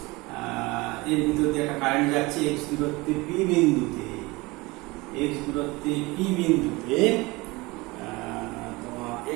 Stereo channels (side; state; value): left; quieter; 23.2 dB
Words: এর ভিতর দিয়ে একটা কারেন্ট যাচ্ছে এক্স দূরত্বে পি বিন্দুতে, এক্স দূরত্বে পি বিন্দুতে, তোমার